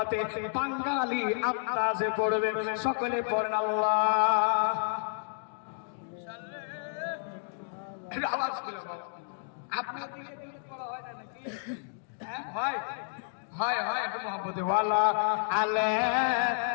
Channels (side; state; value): right; silent; digital silence